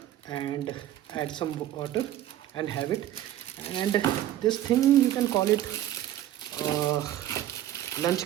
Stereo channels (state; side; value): quieter; left; 12.7 dB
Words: and add some water and have it. And this thing, you can call it uh, lunch